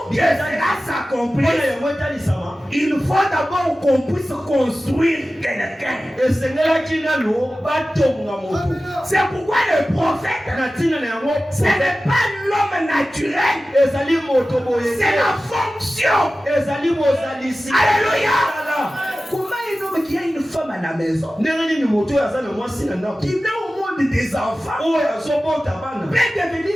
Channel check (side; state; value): both; normal; correlation 0.95